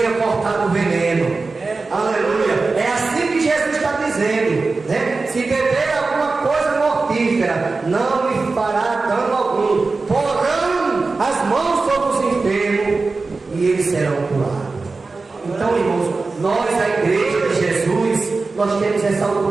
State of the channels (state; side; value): quieter; left; 3.9 dB